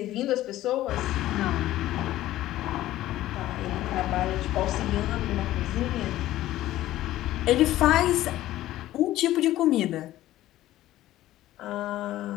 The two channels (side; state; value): right; quieter; 14.7 dB